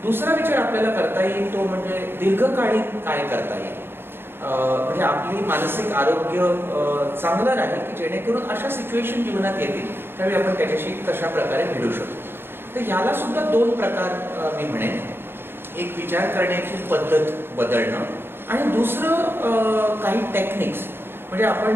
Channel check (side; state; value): left; late; 0.11 ms